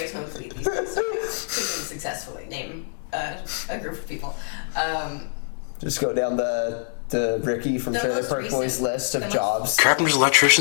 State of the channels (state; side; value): silent; right; digital silence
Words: smokes weed these days. So couldn't successfully name a group of people. Just go down the Ricky from Trailer Park Boys list of jobs. Carpenters,